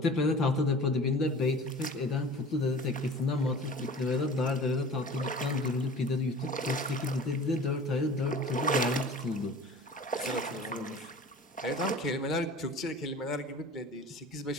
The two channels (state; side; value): normal; both; correlation 0.41